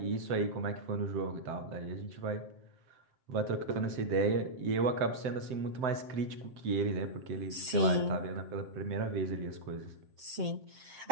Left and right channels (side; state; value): left; late; 7.6 ms